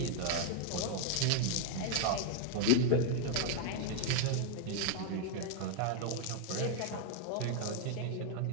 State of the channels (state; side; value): different; both; correlation 0.00